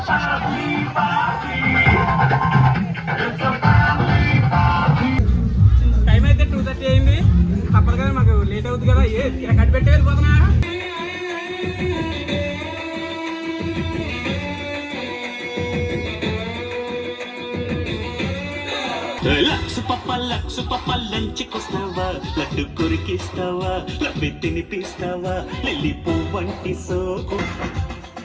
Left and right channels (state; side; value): identical; both; correlation 1.00